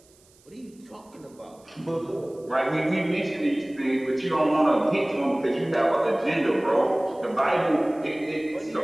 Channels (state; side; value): noise; right; hiss, 30 dB below the sound